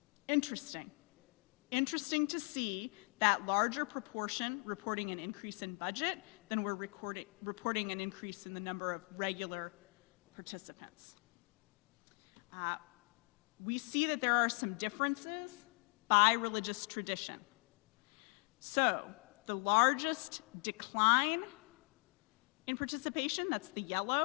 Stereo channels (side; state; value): right; quieter; 39.2 dB